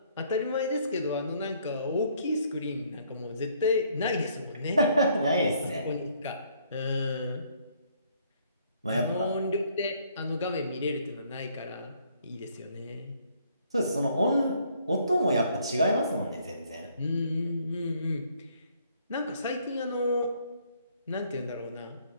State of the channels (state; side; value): inverted; both; correlation -0.65